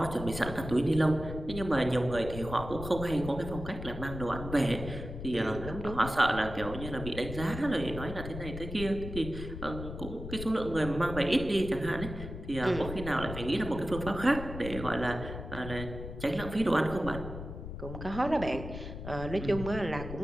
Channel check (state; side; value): noise; left; rumble, 9 dB below the sound